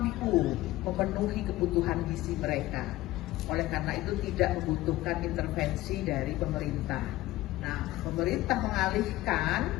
memenuhi kebutuhan gizi mereka. Oleh karena itu tidak membutuhkan intervensi dari pemerintah. Nah, pemerintah mengalihkan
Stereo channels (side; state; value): right; quieter; 17.0 dB